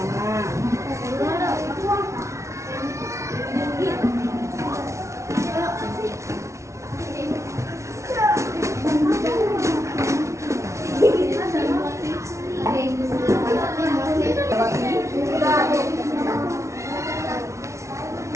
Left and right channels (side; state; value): left; late; 0.14 ms